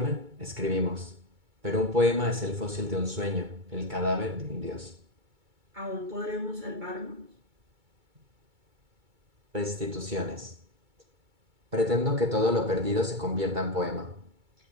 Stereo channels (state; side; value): late; left; 2.2 ms